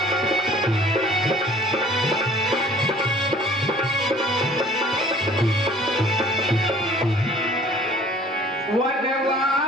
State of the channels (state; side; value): normal; both; correlation 0.52